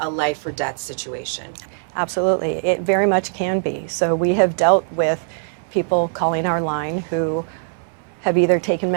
life or death situation. Absolutely, it very much can be. So we have dealt with people calling our line who have either taken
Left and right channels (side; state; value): left; silent; 61 dB below the other